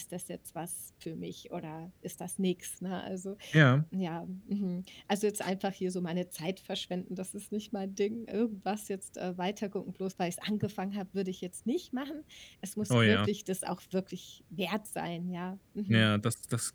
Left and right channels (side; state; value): both; identical; correlation 1.00